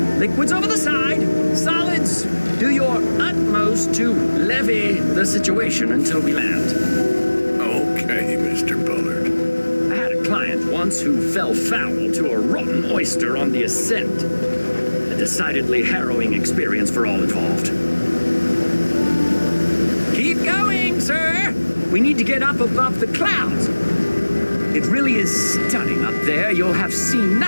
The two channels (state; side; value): inverted; both; correlation -1.00